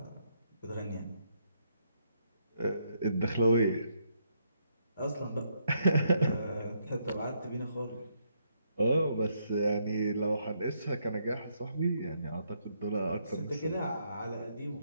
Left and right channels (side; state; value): both; inverted; correlation -0.75